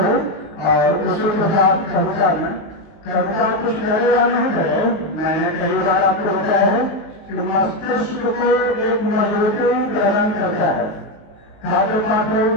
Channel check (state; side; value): late; right; 19 ms